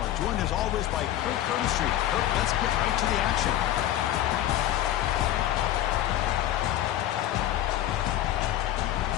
joined as always by Kirk Curtis. Kirk, let's get right to the action.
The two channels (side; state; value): right; quieter; 12.9 dB